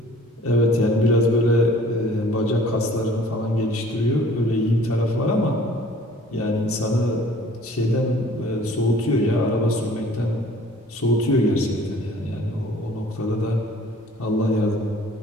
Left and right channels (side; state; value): both; normal; correlation 0.52